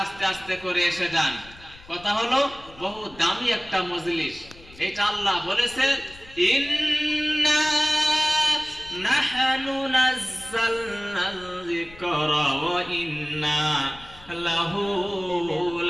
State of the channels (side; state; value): left; noise; rumble, 21 dB below the sound